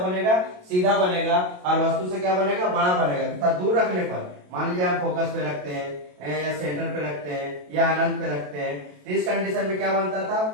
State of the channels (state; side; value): late; left; 27 ms